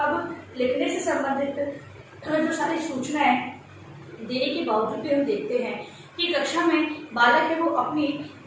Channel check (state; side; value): identical; both; correlation 1.00